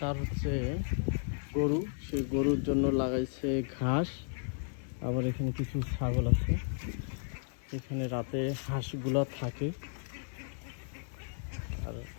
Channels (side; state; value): right; silent; 55 dB below the other